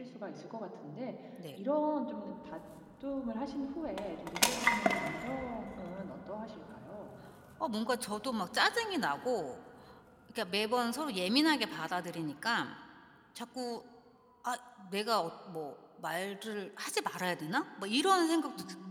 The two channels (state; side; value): identical; both; correlation 1.00